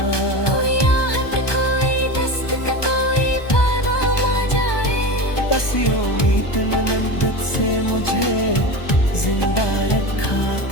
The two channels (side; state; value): right; late; 1.2 ms